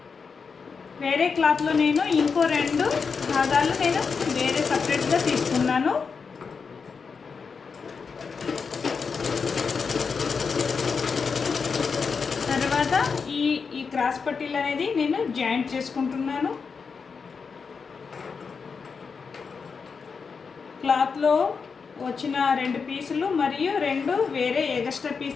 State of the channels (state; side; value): quieter; right; 5.4 dB